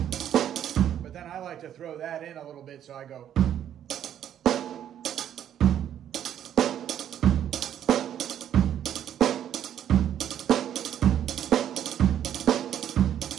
But then I like to throw that in a little bit, so I go.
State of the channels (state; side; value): quieter; left; 10.3 dB